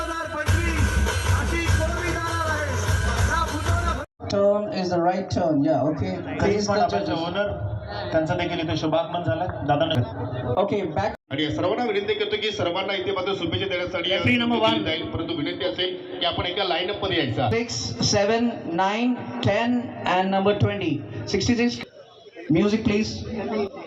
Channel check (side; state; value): both; identical; correlation 1.00